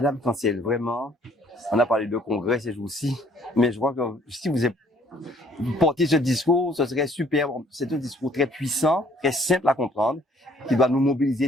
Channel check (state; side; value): normal; both; correlation 0.61